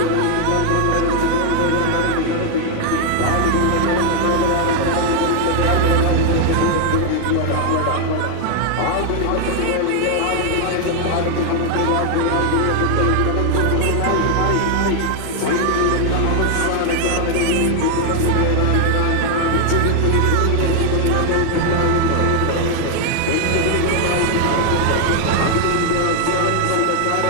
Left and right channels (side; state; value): both; different; correlation 0.00